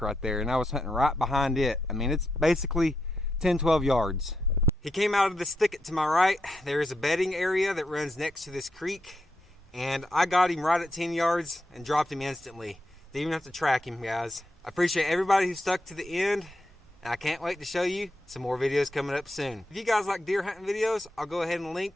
right there. And I was hunting right behind it. I mean, it's basically 10, 12 yards. He came out of this thicket to my right. There is a bedding area that runs next to this creek, and I got him right at 10 yards and dropped him instantly. Didn't even have to track him, guys. I appreciate everybody who stuck to the end, and I can't wait to show you some more videos coming up soon. If you guys like deer hunting videos, I'll go ahead and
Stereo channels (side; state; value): both; normal; correlation 0.84